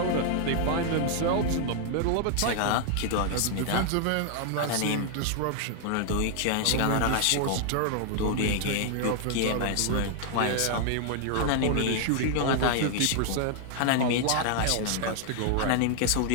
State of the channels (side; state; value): both; different; correlation 0.00